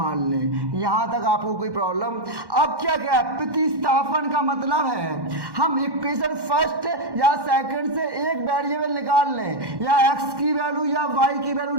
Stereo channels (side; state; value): left; late; 1.1 ms